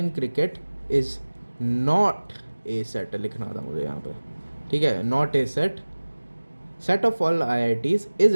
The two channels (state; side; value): inverted; both; correlation -1.00